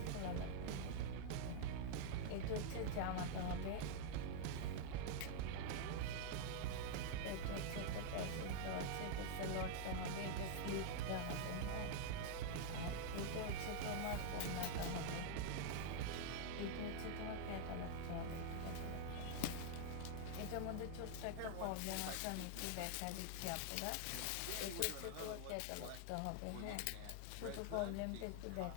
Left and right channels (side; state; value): both; different; correlation 0.00